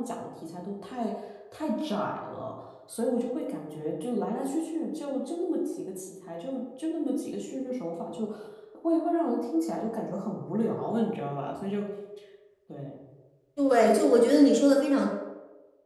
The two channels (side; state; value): both; identical; correlation 1.00